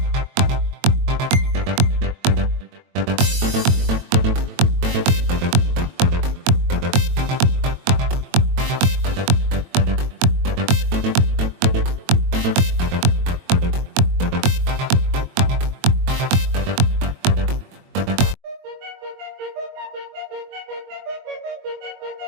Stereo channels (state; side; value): late; left; 22 ms